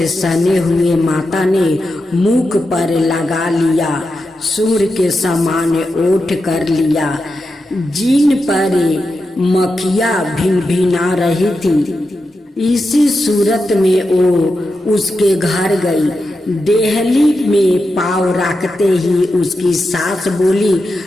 सने हुए माता ने मुख पर लगा लिया, सूर्य के समान ओठ कर लिया, जिन पर मक्खियाँ भिनभिना रही थी। इसी सूरत में वो उसके घर गई। देहली में पाँव रखते ही उसकी सास बोली,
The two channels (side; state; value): both; normal; correlation 0.89